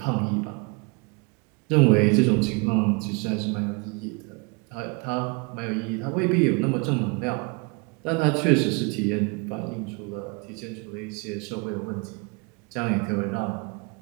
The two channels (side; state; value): left; quieter; 30.7 dB